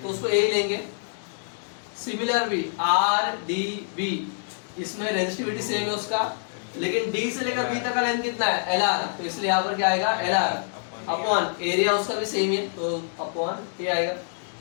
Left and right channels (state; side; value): silent; right; digital silence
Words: तो उसको A लेंगे। सिमिलर भी आर डी बी, इसमें रेजिस्टिविटी सेम है उसका, लेकिन D से लेकर B तक का लेंथ कितना है? Lr, तो इसलिए यहाँ पर क्या आएगा? Lr अपॉन एरिया उसका भी सेम है, तो अपॉन A आएगा।